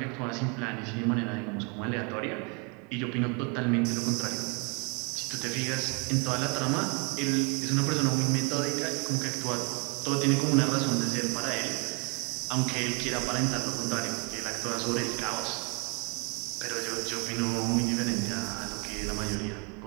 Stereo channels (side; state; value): left; quieter; 33.0 dB